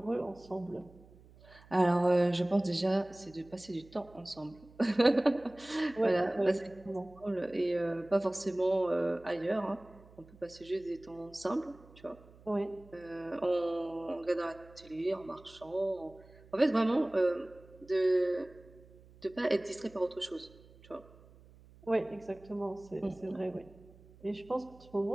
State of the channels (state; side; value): noise; right; hum, 24 dB below the sound